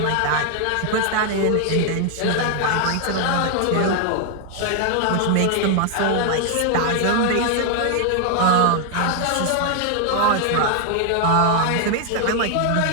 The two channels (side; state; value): both; different; correlation 0.00